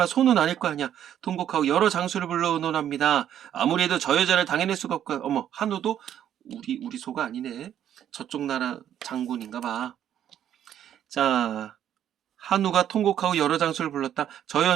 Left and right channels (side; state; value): left; quieter; 10.4 dB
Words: 소는 아닐 거 아니야. 통곡하고 여러 장수를 불러 의논합니다. 아무래도 저 여자를 당해낼 수가 없고. 어머, 한우도 우리 소가 아니네. 저쪽 나라 장군인가 봐. 자, 한우가 통곡하고 여러 장수를 불렀다. 저